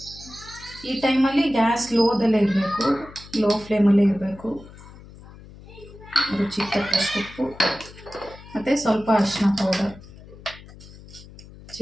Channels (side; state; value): left; noise; hum, 19 dB below the sound